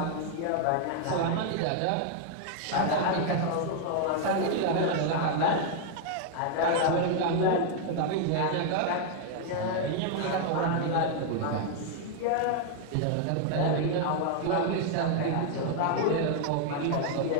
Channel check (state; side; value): different; both; correlation 0.00